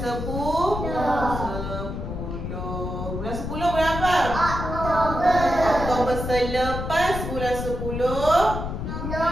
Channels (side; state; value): left; noise; rumble, 5 dB below the sound